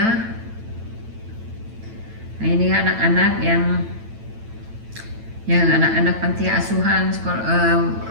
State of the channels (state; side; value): late; left; 9.0 ms